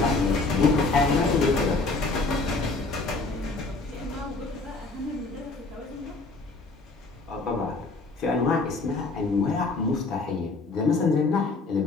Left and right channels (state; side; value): quieter; right; 3.6 dB